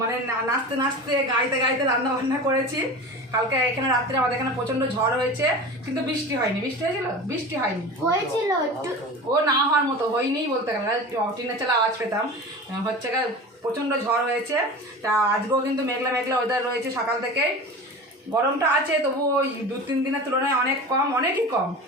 নাচতে গাইতে গাইতে রান্না বান্না করেছি। কালকে এখানে রাত্রে আমাদের এখানে প্রচণ্ড ঝড় হয়েছে, কিন্তু বৃষ্টি হয়নি। বৃষ্টি হয়েছিল? বৃষ্টি হয়নি, হয়েছিল ও না হওয়ার মতো হয়নি বলতে গেলে, টিনের চালা আওয়াজ পেতাম। হচ্ছে প্রচণ্ড ঝড় হয়েছে। তা আজকেও কিন্তু মেঘলা মেঘলা ওয়েদার রয়েছে সকাল থেকে। গরমটা আছে, তবু ওই 2-3 দিনের তুলনায় অনেক কম, অনেকই কম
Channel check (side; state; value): both; normal; correlation 0.33